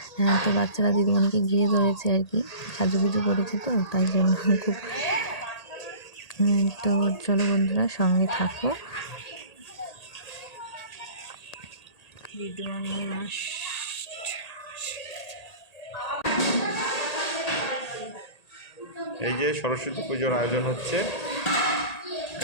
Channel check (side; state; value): right; late; 1.8 ms